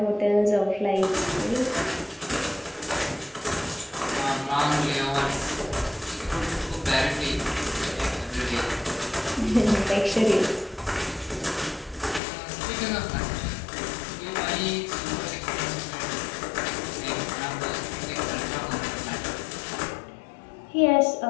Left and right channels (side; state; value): right; drops out; at 12.2 s